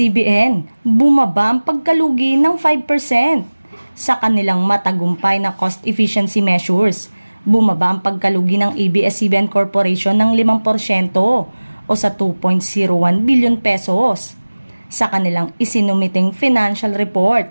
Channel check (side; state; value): both; inverted; correlation -1.00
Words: bumaba ang pagkalugi ng 5%. Sa kanilang matagumpay na cost efficiency measures, bumaba ang pagkalugi ng ABS-CBN Corporation ng 5% o sa 2.01 billion pesos. Sa kanilang isinumiting financial